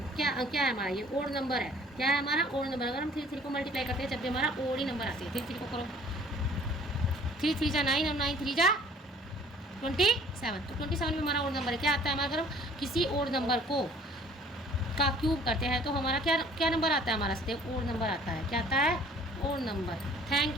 क्या क्या है हमारा, ये ओड नंबर है, क्या है हमारा ओड नंबर। अगर हम 3 को मल्टीप्लाई करते हैं जब भी हमारा ओड ही नंबर आते हैं। 3 को करो, 3 3 जा 9 और 9 3 जा 27। तो 27 में हमारा ओड नंबर है, क्या आता है हमारा, अगर हम किसी ओड नंबर को का क्यूब करते हैं तो हमारा क्या क्या नंबर आता है हमारा, ओड नंबर आता है, क्या आता है ओड नंबर।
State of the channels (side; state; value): both; normal; correlation 0.54